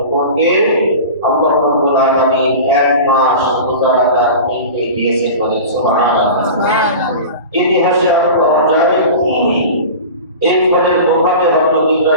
উপরকে আল্লাহ রাব্বুল আলামিন 1 মাস রোজা রাখার নির্দেশ দিয়েছেন, বলেন সুবহানাল্লাহ। ইতিহাসে আরো পাওয়া যায় এই ফলের প্রভাবে হযরত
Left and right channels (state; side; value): inverted; both; correlation -0.33